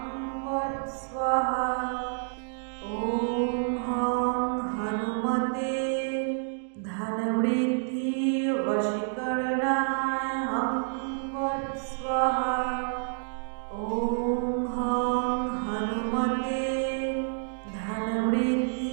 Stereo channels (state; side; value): silent; left; 59 dB below the other